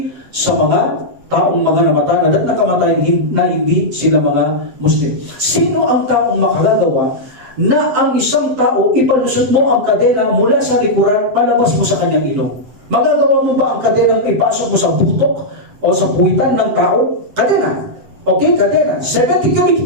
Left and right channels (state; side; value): late; left; 7.8 ms